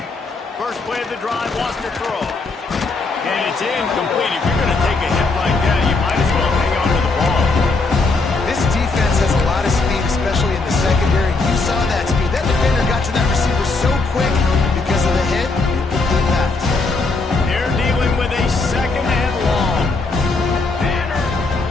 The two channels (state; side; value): quieter; right; 3.7 dB